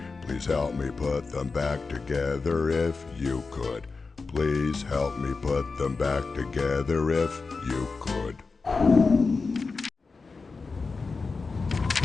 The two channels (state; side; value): quieter; right; 4.3 dB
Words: Please help me put them back together if you could. Please help me put them back together if you could.